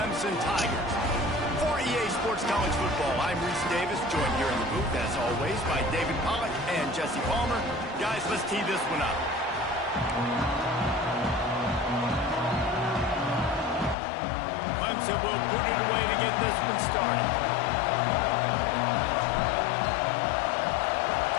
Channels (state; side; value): drops out; right; at 14.0 s